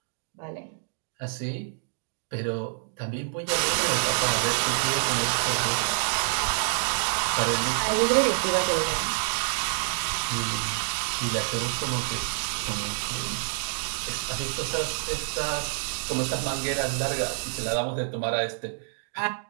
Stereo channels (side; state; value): left; silent; digital silence